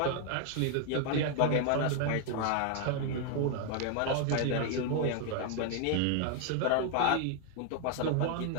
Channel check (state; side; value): different; both; correlation 0.00